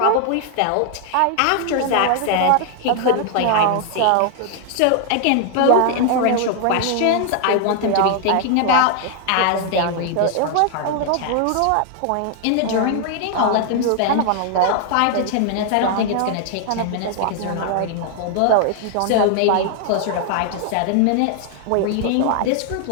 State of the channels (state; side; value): different; both; correlation 0.00